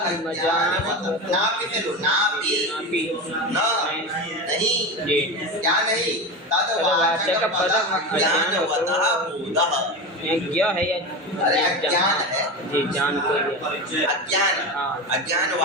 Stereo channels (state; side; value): normal; both; correlation 0.23